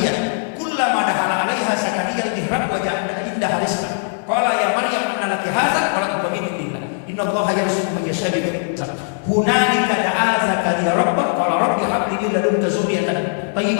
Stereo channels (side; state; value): right; silent; 66 dB below the other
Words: kullama dahala 'alaiha Zakaria al-mihrab wa ja'ala indaha rizqan qala ya Maryam anna laki hadza qalat billah inna Allaha yarzuqu man yasha'u bi hunalika da'a Zakaria rabbah qala rabbi hab li min ladunka dzurriyyatan